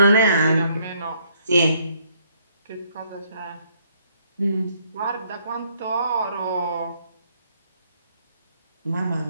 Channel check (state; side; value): inverted; both; correlation -0.68